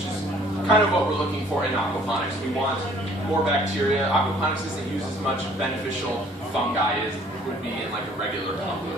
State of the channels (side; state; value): both; normal; correlation 0.57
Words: is kind of what we're looking for in aquaponics. We want more bacteria. Aquaponics doesn't use as much beneficial fungi as would be in like a regular